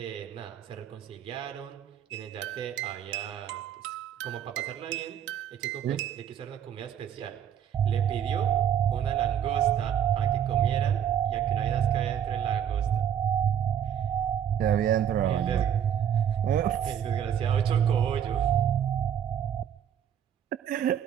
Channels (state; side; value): quieter; left; 9.3 dB